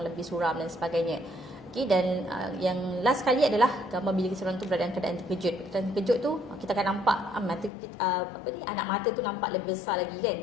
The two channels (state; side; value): drops out; right; at 7.7 s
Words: lebih suram dan sebagainya. Okey, dan yang last kali adalah gambar bila seorang tu berada dalam keadaan terkejut. Keadaan terkejut tu kita akan nampak mata kita, anak mata tu nampak lebih besar lagi kan.